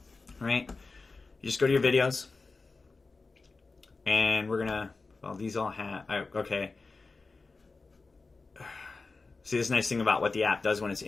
right, you just go to your videos, and we're going to, well, these all have, okay. See, this nice thing about what the app does when it's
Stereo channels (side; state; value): right; quieter; 3.9 dB